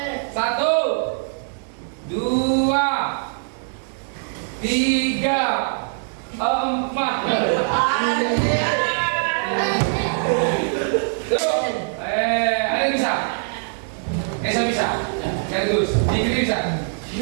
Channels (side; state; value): left; silent; digital silence